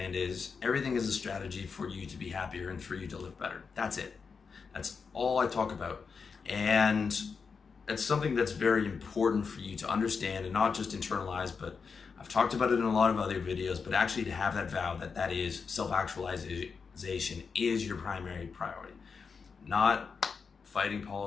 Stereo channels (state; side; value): quieter; right; 5.4 dB